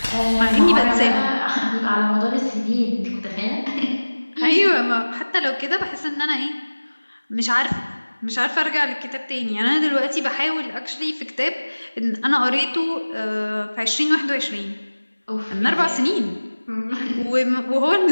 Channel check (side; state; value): both; inverted; correlation -1.00